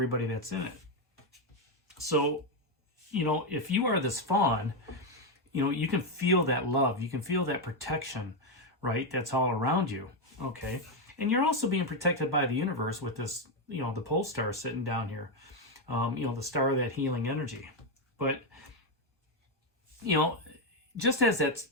that's in it. So, if you are this fawn, you can feel that love. You can feel that protection, right? That's all around you, okay? And you're also being protected by the universe with this, the pole star sitting down here, the star of that healing energy. But, just as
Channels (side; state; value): both; normal; correlation 0.05